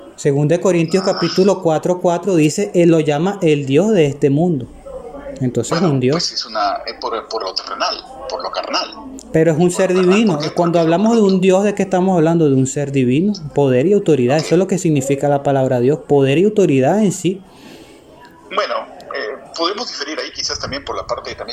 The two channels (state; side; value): identical; both; correlation 1.00